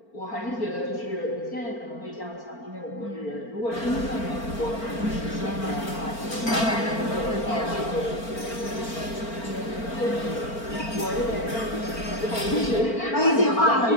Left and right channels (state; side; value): late; right; 4.4 ms